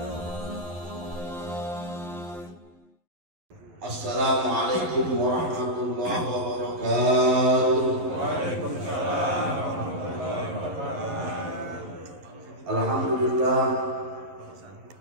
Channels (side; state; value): left; late; 11 ms